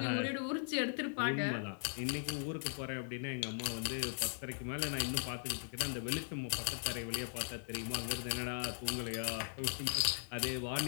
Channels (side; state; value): right; silent; digital silence